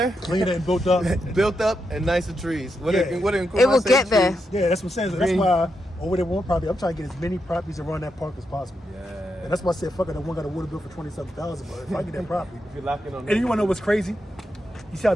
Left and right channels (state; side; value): normal; both; correlation 0.84